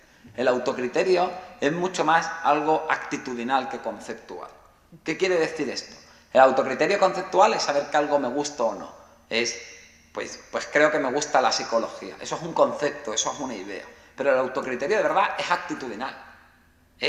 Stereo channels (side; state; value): both; identical; correlation 1.00